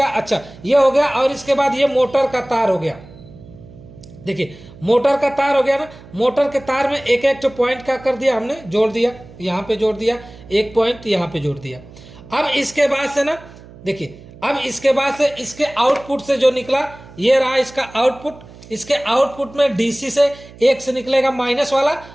अच्छा, ये हो गया। और इसके बाद ये मोटर का तार हो गया। देखिए मोटर का तार हो गया ना, मोटर के तार में एक एक पॉइंट क्या कर दिया हमने? जोड़ दिया। यहाँ पे जोड़ दिया, एक पॉइंट यहाँ पे जोड़ दिया। अब इसके बाद से ना, देखिए अब इसके बाद से इसके आउटपुट से जो निकला, ये रहा इसका आउटपुट। इसके आउटपुट में डीसी से एक से निकलेगा माइनस वाला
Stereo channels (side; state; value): right; noise; hum, 20 dB below the sound